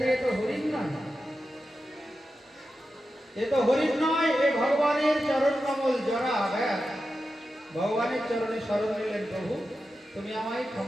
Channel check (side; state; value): both; normal; correlation 0.91